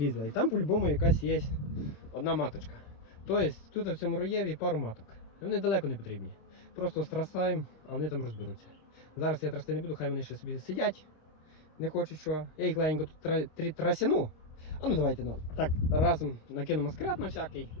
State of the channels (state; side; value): late; right; 26 ms